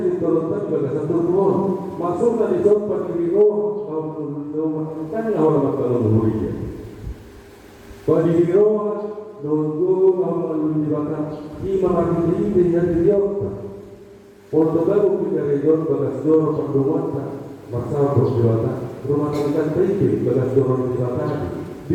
diturunkan pada satu ruang, masuklah di tempat di ruang, kan orang makan mulia. Pada di ruang, dulu orang dibakar, lima hari ini dengan dia. Untuk baru kita region bagas dorong perdomuan, masalah perjuangan, rumah tangga tinggi bagas dorong dibakar.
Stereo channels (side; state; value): both; identical; correlation 1.00